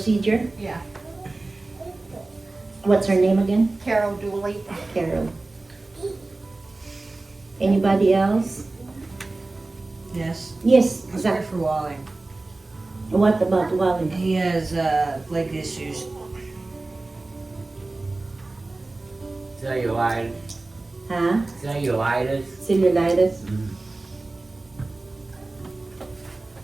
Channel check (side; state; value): left; quieter; 3.2 dB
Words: Yeah, What's her name again? Carol Dooley. Carol. Anybody else? Yes, Yes, let's Zach. pray for Wally. What about Wally? He has leg issues. Cellulitis. Huh? Cellulitis. Cellulitis.